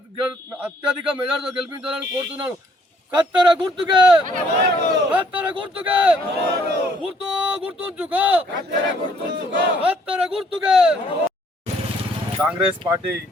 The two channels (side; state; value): both; normal; correlation 0.64